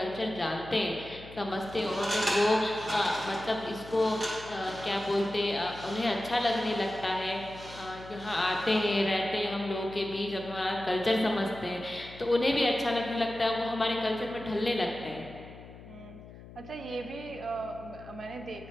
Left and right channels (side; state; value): left; noise; hum, 17 dB below the sound